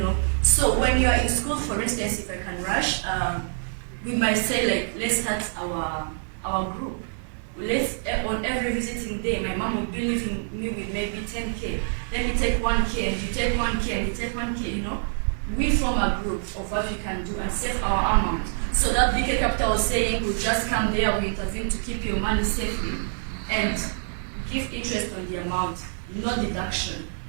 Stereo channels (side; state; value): left; silent; digital silence